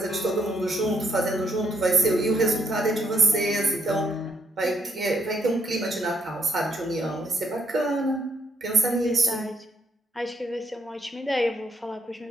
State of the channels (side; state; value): both; normal; correlation 0.71